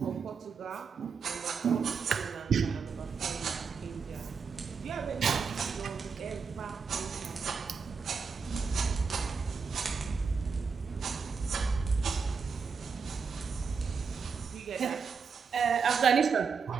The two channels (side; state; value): left; quieter; 5.6 dB